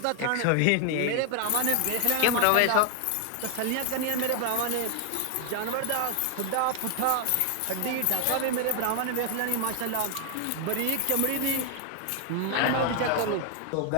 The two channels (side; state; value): both; different; correlation 0.00